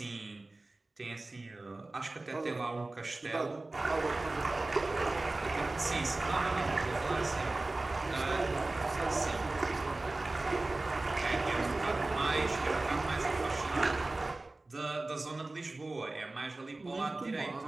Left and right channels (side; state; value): left; quieter; 3.0 dB